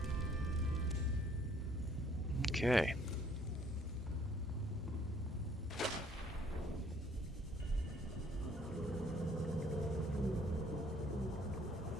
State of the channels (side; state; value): both; normal; correlation 0.61